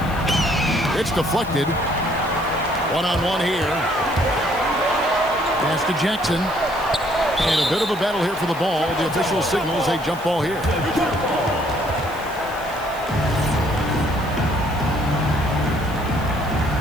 It's deflected. One-on-one here. Pass to Jackson. And a bit of a battle here for the ball. The official signals a jump ball here.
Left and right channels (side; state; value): right; noise; hiss, 20 dB below the sound